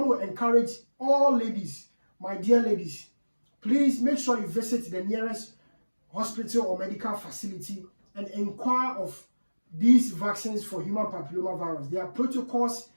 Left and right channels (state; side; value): inverted; both; correlation -1.00